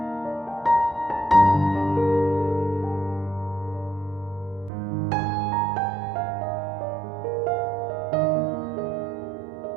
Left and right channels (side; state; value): left; drops out; at 4.7 s